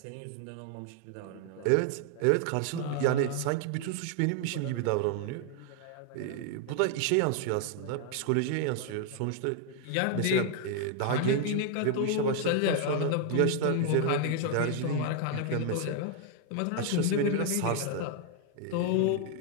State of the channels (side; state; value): both; different; correlation 0.00